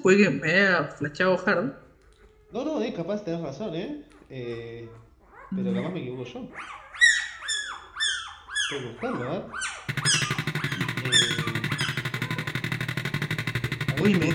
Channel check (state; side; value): identical; both; correlation 1.00